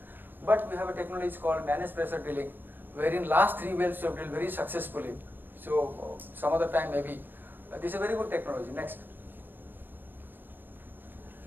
But we have a technology called managed pressure drilling, wherein last 3 wells we have drilled very successfully. So some other time maybe. This is a very good technology. Next.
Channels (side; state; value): left; late; 0.094 ms